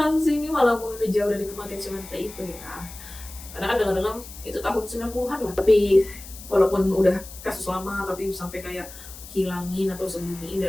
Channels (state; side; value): noise; left; hiss, 15 dB below the sound